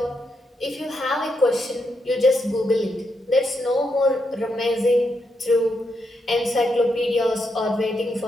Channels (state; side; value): normal; both; correlation 0.82